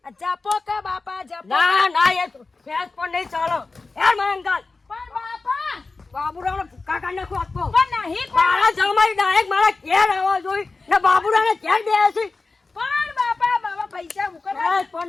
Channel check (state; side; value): quieter; right; 3.8 dB